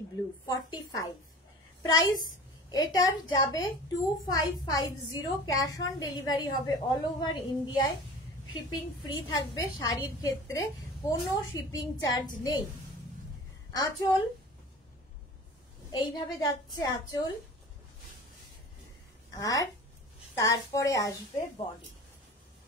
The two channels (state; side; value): normal; both; correlation 0.39